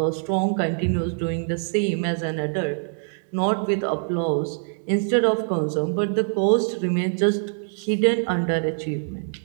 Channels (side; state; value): left; silent; digital silence